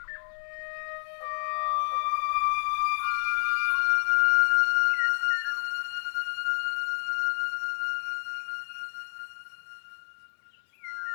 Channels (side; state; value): right; silent; 59 dB below the other